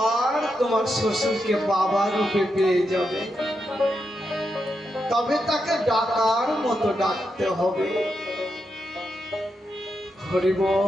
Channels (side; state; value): both; normal; correlation 0.85